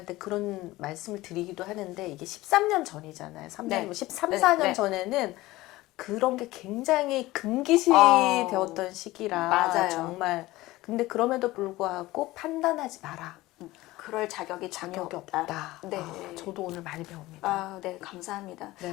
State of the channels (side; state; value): right; quieter; 18.4 dB